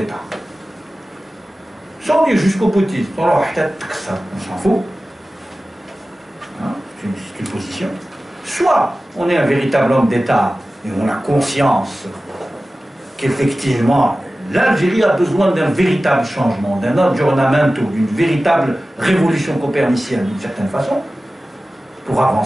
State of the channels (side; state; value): both; normal; correlation 0.96